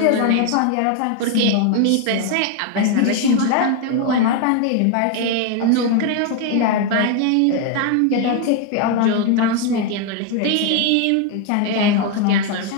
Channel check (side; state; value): both; different; correlation 0.01